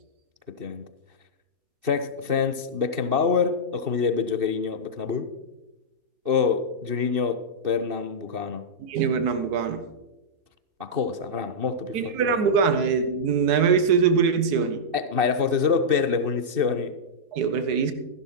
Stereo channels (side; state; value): left; late; 2.6 ms